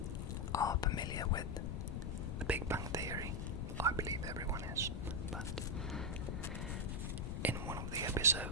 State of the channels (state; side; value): noise; left; rumble, 2 dB below the sound